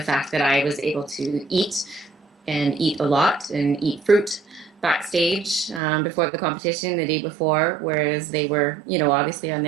that I was able to eat and eat a lot and eat fruit backstage before the competition the day before, whereas they were, obviously on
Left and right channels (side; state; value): left; drops out; at 5.8 s